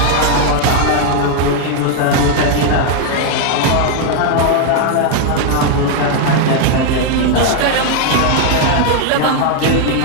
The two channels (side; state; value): both; different; correlation 0.00